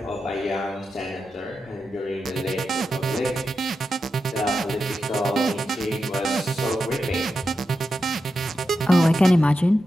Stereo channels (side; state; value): both; normal; correlation 0.88